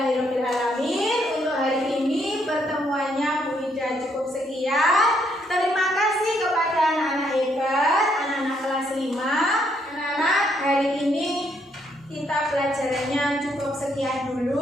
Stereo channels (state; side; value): normal; both; correlation 0.72